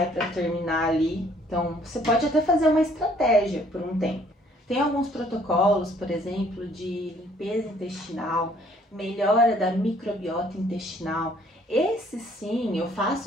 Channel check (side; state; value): both; normal; correlation 0.61